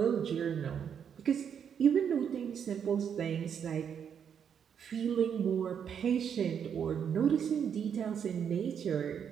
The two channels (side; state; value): left; quieter; 7.9 dB